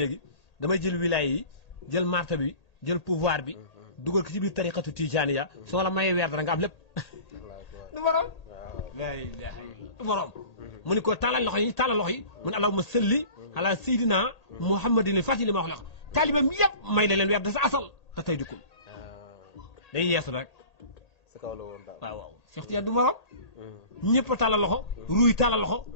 damay jël wilaaya yi jël marta bi jël pouvoir bi dugal ko ci biir tariqatu tijaaniya soo la mayee weer dara nga am lépp du borom laa ilaaha illa du borom mu ni ko tàllal loxo yi mu ne allahumma salli ala sayyidina muhammadin fati li ma wax taalibeem yëpp may la leen weer da sa asal te tey dikkul day yeesu rek sa kaw la woon daal waaw waaw Cheikh Tidiane du morom ñëpp a tàllal loxo ruuy tàllal loxo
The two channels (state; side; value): late; right; 1.8 ms